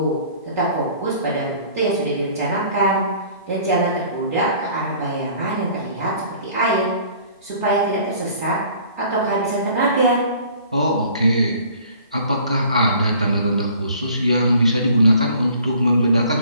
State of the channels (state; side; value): inverted; both; correlation -0.52